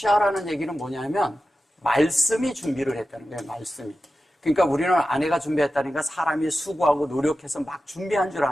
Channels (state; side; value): normal; both; correlation 0.93